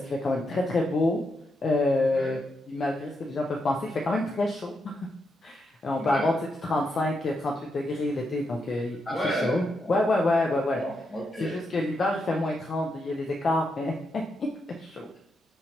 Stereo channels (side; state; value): both; normal; correlation 0.82